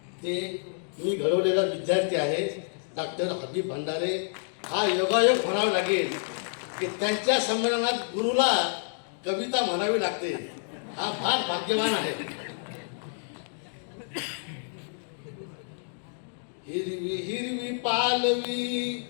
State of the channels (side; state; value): right; silent; digital silence